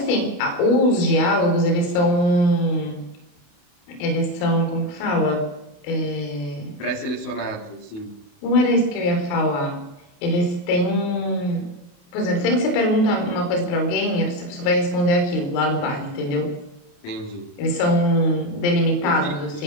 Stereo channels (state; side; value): late; right; 28 ms